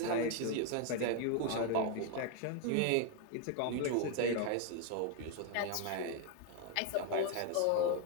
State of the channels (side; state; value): both; different; correlation 0.01